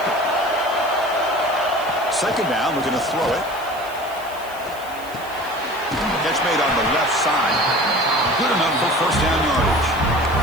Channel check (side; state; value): right; noise; hiss, 19 dB below the sound